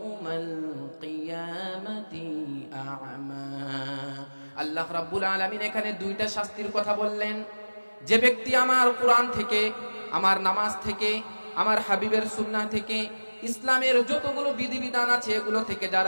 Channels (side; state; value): both; inverted; correlation -1.00